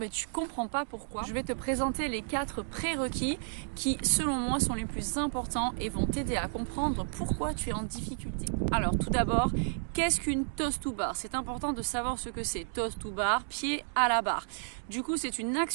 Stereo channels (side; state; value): left; silent; digital silence